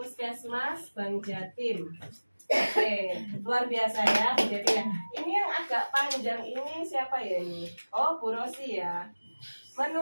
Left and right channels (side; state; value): both; inverted; correlation -1.00